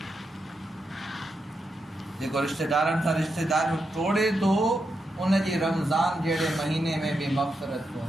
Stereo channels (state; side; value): normal; both; correlation 0.85